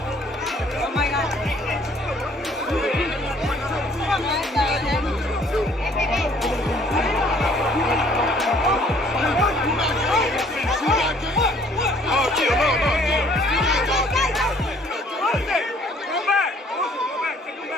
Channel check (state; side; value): normal; both; correlation 0.59